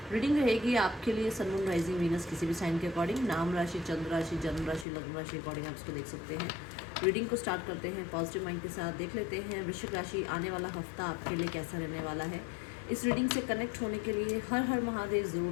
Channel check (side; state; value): right; drops out; at 4.9 s